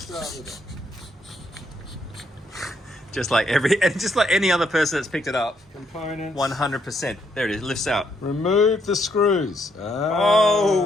with it? Just like any other person that's picked it up. Components. 100%. There it is. Lifts out. Remove the screws.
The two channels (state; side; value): normal; both; correlation 0.74